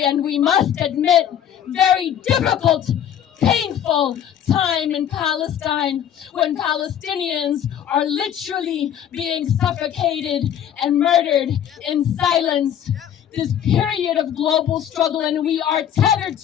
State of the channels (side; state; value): right; quieter; 9.9 dB